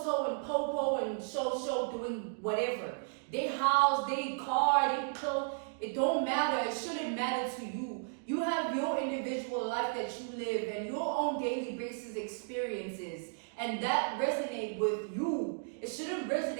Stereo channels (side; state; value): left; silent; digital silence